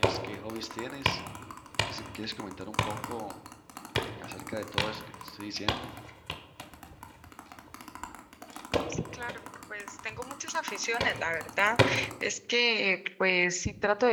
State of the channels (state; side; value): identical; both; correlation 1.00